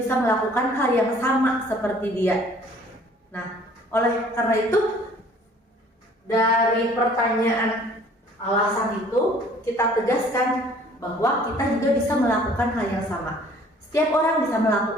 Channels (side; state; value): both; normal; correlation 0.54